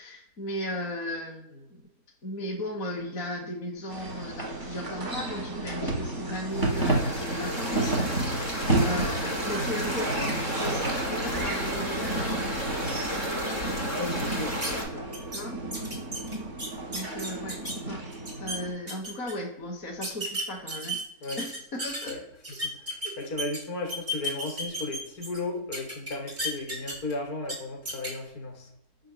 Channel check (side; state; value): right; late; 3.7 ms